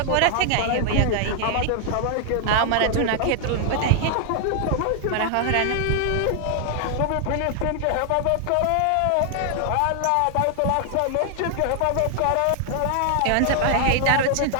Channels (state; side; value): different; both; correlation 0.00